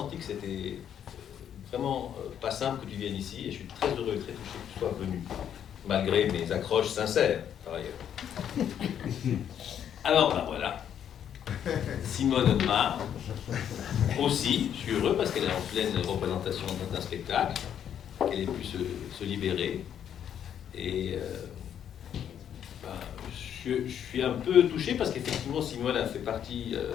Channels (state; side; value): quieter; right; 9.3 dB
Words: que c'était vraiment pas simple que tu viennes ici, et je suis très heureux et très touché que tu sois venu, malgré mes accroches sincères, par ailleurs. Alors, ben voilà. Simone Audemars, aussi, je suis heureux parce qu'elle est en pleine représentation d'un spectacle, qu'elle ait pu se libérer. Et je suis un peu touché parce qu'effectivement Simone a fait partie,